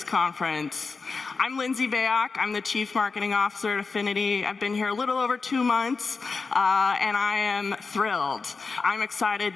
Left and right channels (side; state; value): right; quieter; 4.5 dB